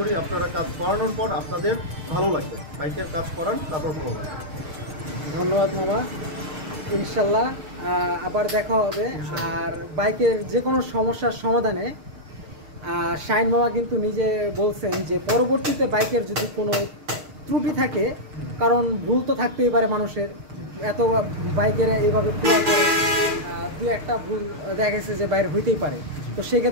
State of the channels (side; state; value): left; late; 6.5 ms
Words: আপনারা কাজ করানোর পর আপনাদের ভালো লাগবে, বাইকের কাজ করান তারপর ভালো লাগবে। ধন্যবাদ মামা, ইনশাল্লাহ আবার দেখা হবে। আর বাইকের যে কোনো সমস্যার সমাধানে শাহিন মামা কিন্তু নিজে বলছেন যে পরবর্তীতে বাইকের যদি কোনো ত্রুটি থাকে, কারণ ভুল তো থাকতেই পারে মানুষের, এত বাইকের এইভাবে খোলা করে দু একটা ভুল দেখা গেছে যে বাইরে হইতেই পারে। তো